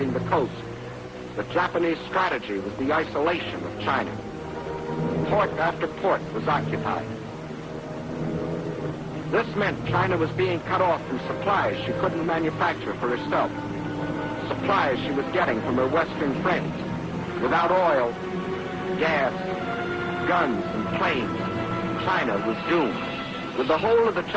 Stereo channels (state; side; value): identical; both; correlation 1.00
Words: the coast. The Japanese strategy was the isolation of China. Port after port was occupied. This meant China was being cut off from supplies she couldn't manufacture for herself. Supplies she was getting from her Western friends. Without oil, gas, guns, and planes, China was doomed. With the whole of the